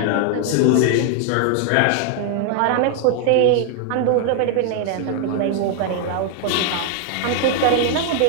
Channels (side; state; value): both; different; correlation 0.00